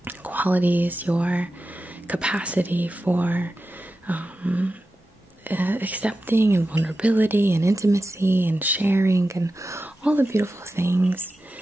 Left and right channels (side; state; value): both; normal; correlation 0.92